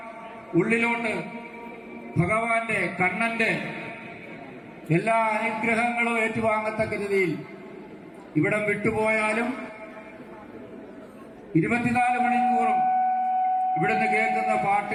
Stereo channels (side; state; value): both; identical; correlation 1.00